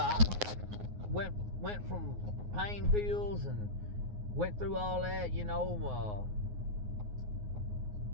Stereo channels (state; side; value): late; left; 9.6 ms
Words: went from pain pills and went through all that,